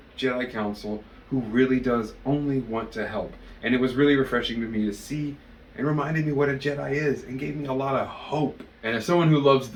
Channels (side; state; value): both; identical; correlation 1.00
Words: Jedi Council who really does only want to help, and it was really refreshing to me to see and reminded me what a Jedi is and gave me a lot of hope. And as someone who loves